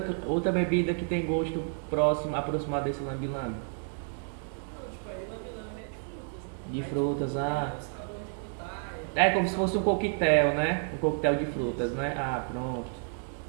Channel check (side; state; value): left; silent; 57 dB below the other